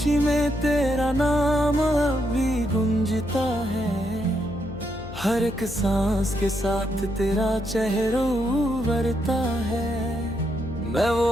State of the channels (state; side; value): noise; left; hum, 12 dB below the sound